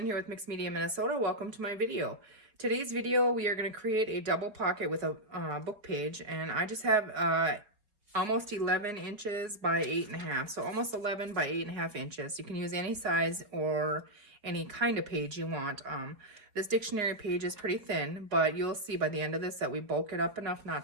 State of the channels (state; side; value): late; left; 4.8 ms